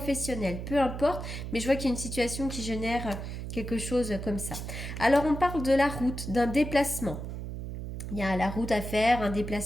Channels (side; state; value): right; noise; hum, 7 dB below the sound